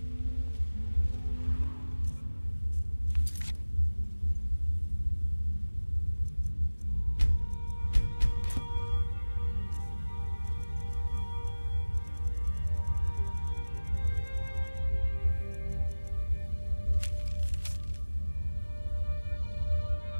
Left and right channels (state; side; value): inverted; both; correlation -1.00